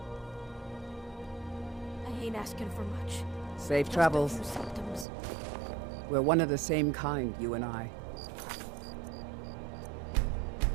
I ain't asking for much. Safe Just travels. a few symptoms. We're one of the same kind, you and I.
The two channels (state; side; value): drops out; left; at 5.1 s